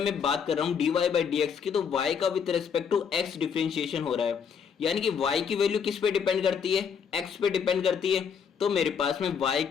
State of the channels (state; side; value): quieter; right; 6.9 dB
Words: बात कर रहा हूँ dy बाई डी एक्स की, तो y का with respect to x differentiation हो रहा है, यानी कि y की वैल्यू किस पे डिपेंड करती है, x पे डिपेंड करती है। तो मेरे पास में y